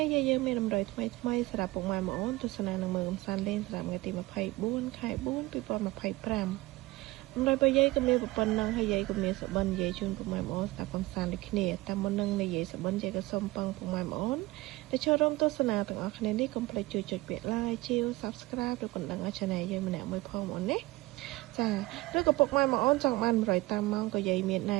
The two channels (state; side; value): quieter; left; 20.1 dB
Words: េះយាយយើងមានតម្រុយថ្មីសម្រាប់ពុកម៉ែបងប្អូនទស្សនានឹងមើលកំសាន្តលេងសម្រាប់ថ្ងៃទី24ខែ4 2025តម្រុយរបស់យាយក៏មានប៉ុណ្ណឹងហើយយាយក៏មានសបិនយាយជូនពុកម៉ែបងប្អូនស្ដាប់កំសាន្តដូចគ្នាតាមមុននឹងនិយាយសបិនយាយក៏សូមពឹងពុកម៉ែបងប្អូនដែលចូលរួមទស្សនាទាំងអស់គ្នានេះកុំភ្លេចជួយចុចពាក្យ like ជាវ Subscribe ឬកណ្ដឹងឲ្យ Channel យើងម្នាក់មួយផងបងប្អូនណាចាឬក៏ពុកម៉ែបងប្អូនចង់បានតម្រុយតាមម៉ោងក៏យាយមានណែ